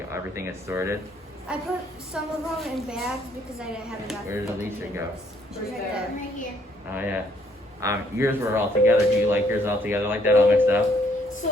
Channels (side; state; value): both; normal; correlation 0.68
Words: everything is sorted. I put some of them in bags because I didn't have enough. Where did Alicia go? She's Right right there. there. Right here. Oh yeah. Yours were all together. Do you like yours all together like that, all mixed up?